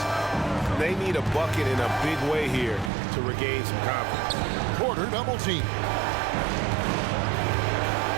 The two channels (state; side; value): drops out; left; at 2.9 s